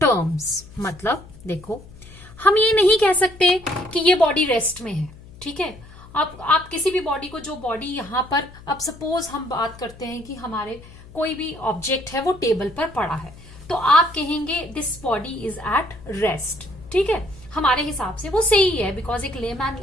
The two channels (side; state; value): left; noise; hum, 20 dB below the sound